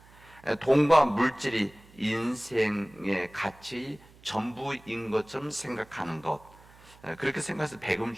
돈과 물질이 인생의 가치 전부인 것처럼 생각하는 것, 그렇게 생각해서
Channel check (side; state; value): right; noise; hum, 25 dB below the sound